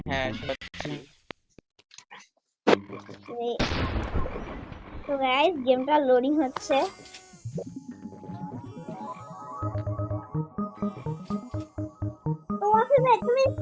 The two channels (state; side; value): identical; both; correlation 1.00